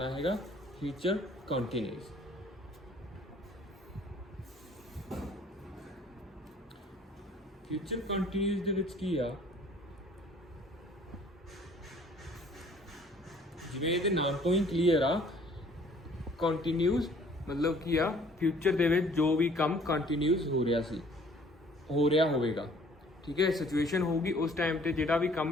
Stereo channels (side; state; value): both; normal; correlation 0.56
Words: ਹੈਗਾ ਫਿਊਚਰ ਕੰਟੀਨਿਊਸ। ਫਿਊਚਰ ਕੰਟੀਨਿਊਸ ਦੇ ਵਿੱਚ ਕੀ ਆ, ਜਿਵੇਂ ਇਹਦੇ ਨਾਮ ਤੋਂ ਹੀ ਕਲੀਅਰ ਆ, ਕੰਟੀਨਿਊਸ मतलब ਕੀ ਆ, ਫਿਊਚਰ ਦੇ ਵਿੱਚ ਜੋ ਵੀ ਕੰਮ ਕੰਟੀਨਿਊਸ ਹੋ ਰਿਹਾ ਹੋਵੇਗਾ। ਠੀਕ ਹੈ, ਸਿਚੁਏਸ਼ਨ ਹੋਊਗੀ ਉਸ ਟਾਈਮ ਤੇ ਜਿਹੜਾ ਵੀ